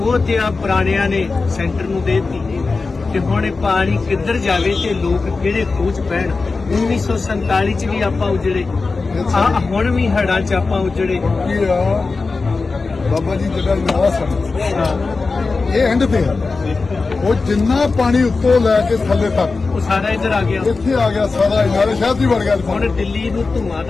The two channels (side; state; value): right; quieter; 4.0 dB